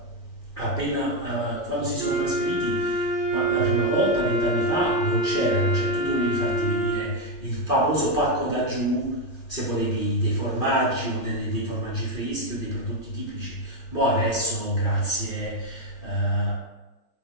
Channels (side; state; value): right; late; 3.4 ms